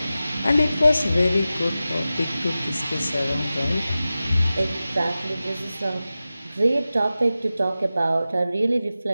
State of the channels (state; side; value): inverted; both; correlation -0.94